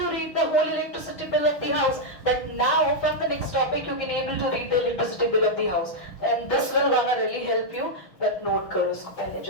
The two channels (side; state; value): right; late; 6.1 ms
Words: read the whole electricity bill of the house? But now from the next topic you can able to read the electricity bill of the house, and this will gonna really help you. But note करो इसको पहले